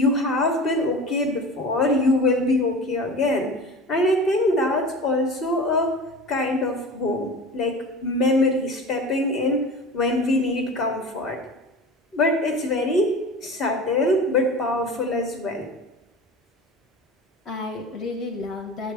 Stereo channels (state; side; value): normal; both; correlation 0.34